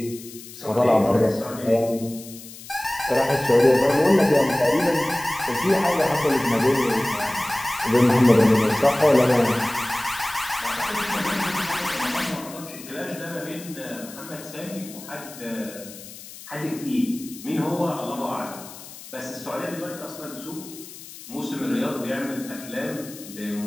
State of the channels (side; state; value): left; noise; hiss, 16 dB below the sound